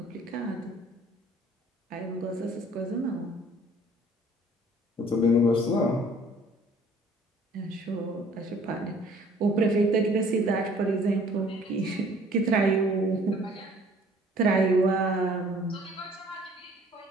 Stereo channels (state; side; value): normal; both; correlation 0.55